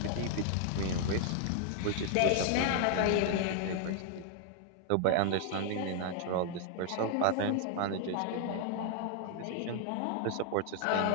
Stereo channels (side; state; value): both; different; correlation 0.00